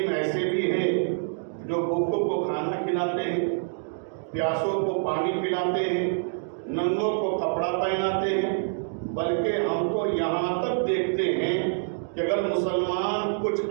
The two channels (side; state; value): left; silent; digital silence